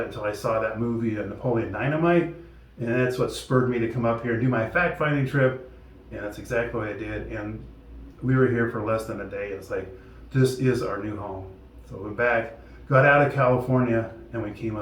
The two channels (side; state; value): both; identical; correlation 1.00